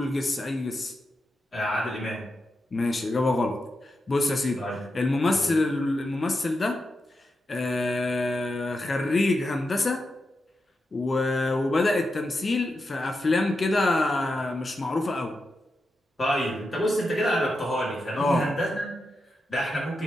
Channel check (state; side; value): normal; both; correlation 0.88